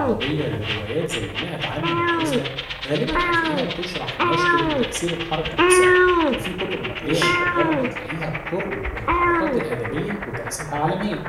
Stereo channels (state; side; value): identical; both; correlation 1.00